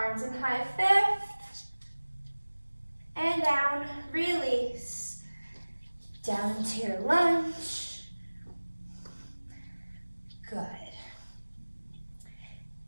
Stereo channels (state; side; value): inverted; both; correlation -1.00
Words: in high fifth. And down. Release. Down into your lunge. Good.